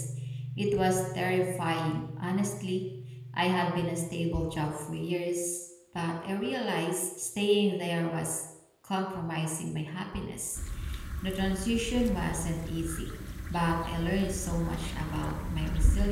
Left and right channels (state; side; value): identical; both; correlation 1.00